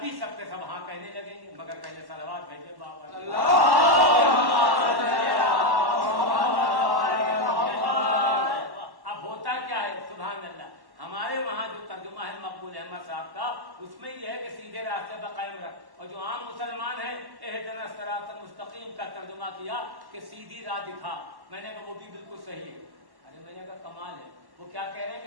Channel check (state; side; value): late; left; 1.1 ms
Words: سب کے سب ہاں کہنے لگیں گے، مگر پہلے صلوات بھیجے بابا. اب ہوتا کیا ہے سبحان اللہ، ہمارے وہاں جو ترجمہ ہے مقبول احمد صاحب کا، اس میں یہ ہے کہ سیدھے راستے پر قائم رکھ، اور جو عام مسلمان ہیں اہدنا الصراط المستقیم کا ترجمہ کیا کہ سیدھی راہ دکھا. میں نے کہا وہ بھی بالکل صحیح ہے. ارے میں نے کہا کمال ہے، وہ کیا کہہ رہے ہیں